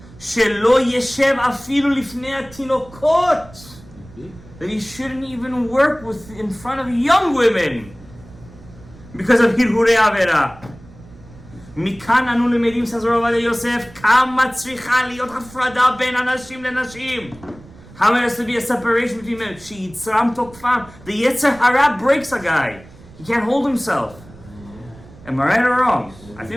Shelo yeshev afilu lifnei hatinokot. That he shouldn't even work with in front of young women because of hirhure avera. Mikan anu lemedim, says Rav Ovadia Yosef, kama tzricha liot hafrada ben anashim lenashim. How there has to be a separation between men. Sheyitzram tokfam. The Yetzer Hara breaks a guy. He can't hold himself. Am I right or wrong? I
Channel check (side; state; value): right; noise; rumble, 21 dB below the sound